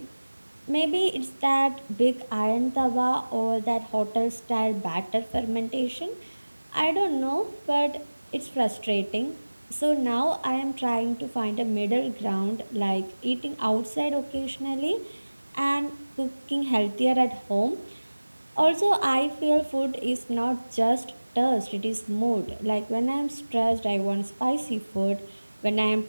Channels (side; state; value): both; inverted; correlation -1.00